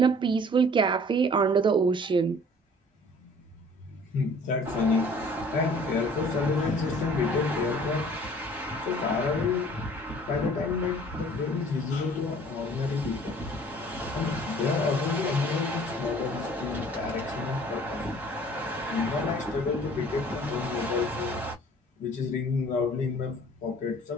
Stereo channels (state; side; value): normal; both; correlation 0.51